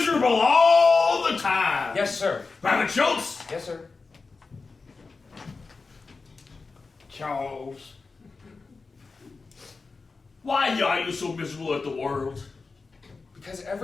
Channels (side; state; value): right; quieter; 4.2 dB